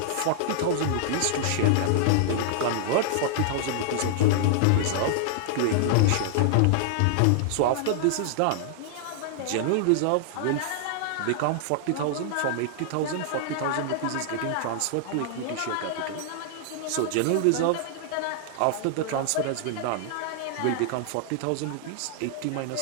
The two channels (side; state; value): both; different; correlation -0.01